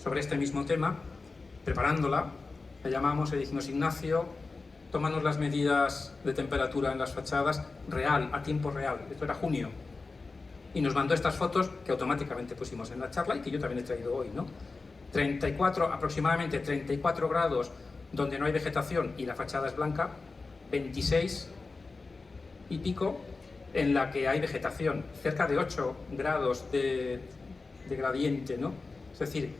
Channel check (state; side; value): quieter; right; 3.9 dB